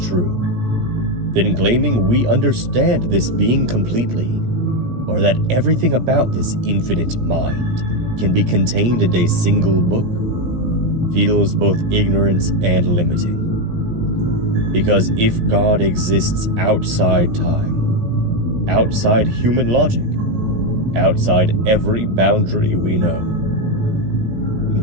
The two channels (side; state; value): left; late; 17 ms